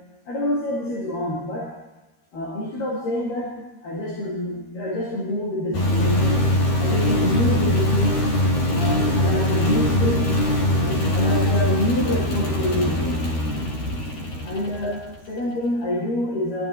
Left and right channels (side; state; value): right; late; 13 ms